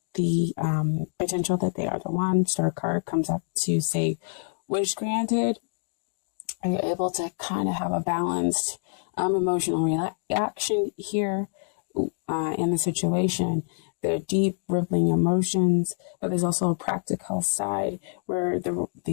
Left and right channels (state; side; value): silent; right; digital silence